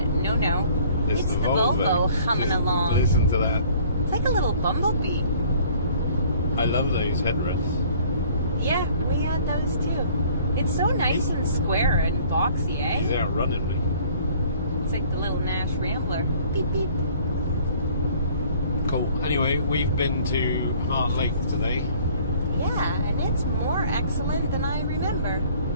no. It's the Volvo humming along. Listen to that. It's like a little bumblebee. I love those headrests. Yeah, we had those too. It's so nice and square and boxy, eh? He's outrunning me. It's like the little Nash Rambler. Beep, beep. Cool. Anyway, we've been to Hart Lake today. Yeah, and it's more excellent than I remember.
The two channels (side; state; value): both; inverted; correlation -0.54